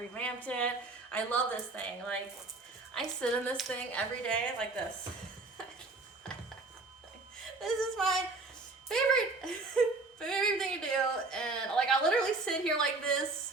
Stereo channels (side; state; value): left; quieter; 3.5 dB